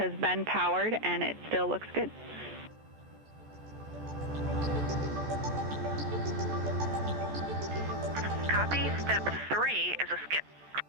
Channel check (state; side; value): late; left; 14 ms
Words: been powered and it still looks good. Copy. Step 3 is a skip.